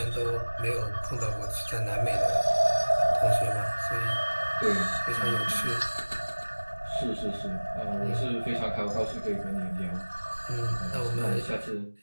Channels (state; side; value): inverted; both; correlation -1.00